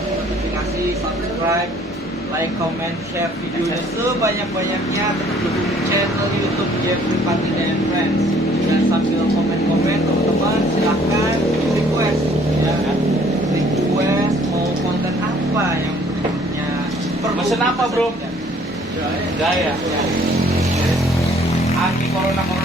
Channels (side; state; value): both; normal; correlation 0.58